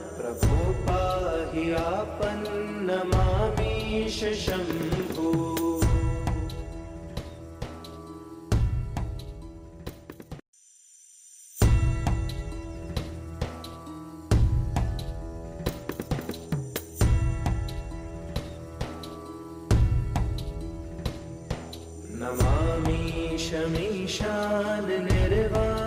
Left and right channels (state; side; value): identical; both; correlation 1.00